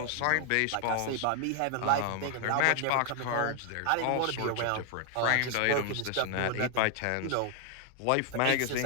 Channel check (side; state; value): both; different; correlation 0.00